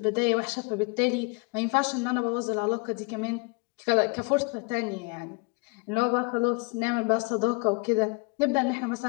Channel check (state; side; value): quieter; right; 30.8 dB